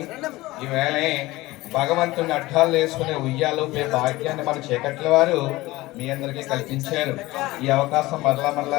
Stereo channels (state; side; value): quieter; right; 19.2 dB